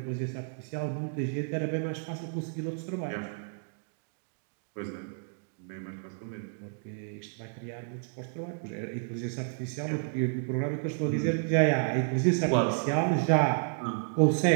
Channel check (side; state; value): left; silent; digital silence